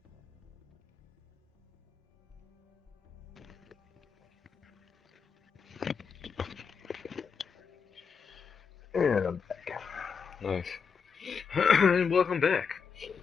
And I'm back. Nice. And welcome back.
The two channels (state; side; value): quieter; right; 6.0 dB